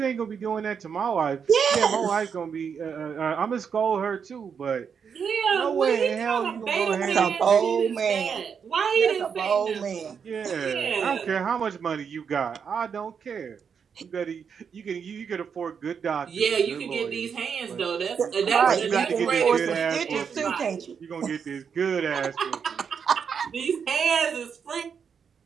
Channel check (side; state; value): left; quieter; 6.7 dB